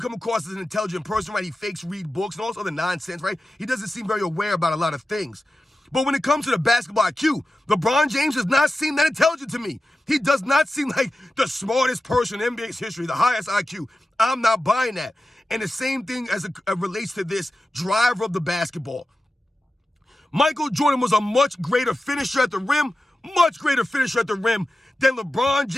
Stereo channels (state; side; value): normal; both; correlation 0.94